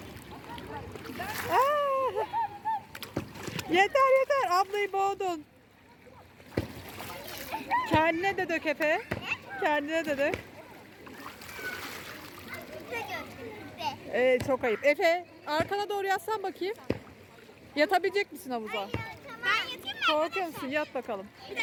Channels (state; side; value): identical; both; correlation 1.00